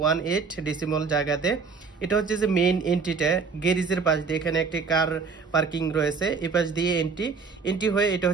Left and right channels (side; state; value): left; quieter; 5.1 dB